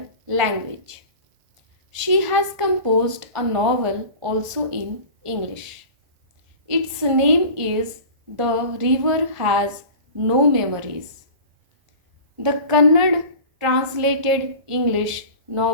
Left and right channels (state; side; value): late; left; 1.5 ms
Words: language. She has composed a novel also in English. Its name is The River Has No Memories. The Kannada translated English